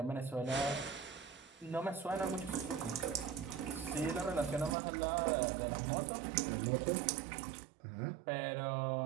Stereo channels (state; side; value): drops out; left; at 4.8 s